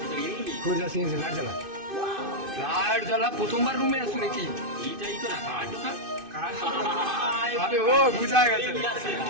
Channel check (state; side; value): late; left; 2.5 ms